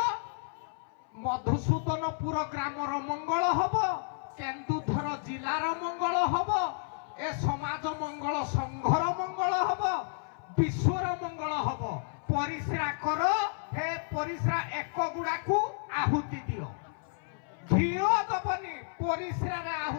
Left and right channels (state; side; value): silent; right; 57 dB below the other